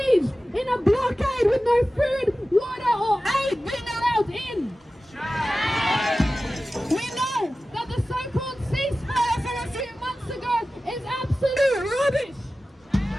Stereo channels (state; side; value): normal; both; correlation 0.95